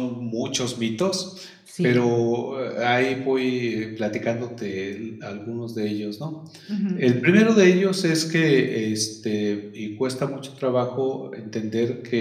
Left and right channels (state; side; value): identical; both; correlation 1.00